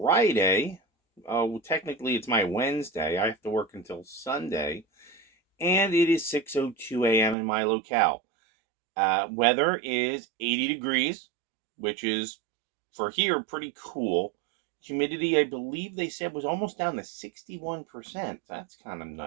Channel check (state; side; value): drops out; left; at 7.4 s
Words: Technically, it's my Wednesday. I have to work until Sunday. And it is 6:02 a.m. in my locale. Weather is 80 degrees, which is, for here, pretty cool. Humidity, I believe they said, was almost down to 61%. That's kind of